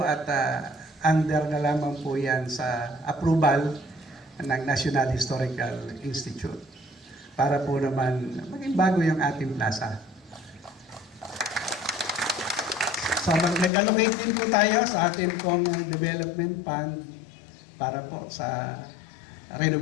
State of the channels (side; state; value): right; drops out; at 13.7 s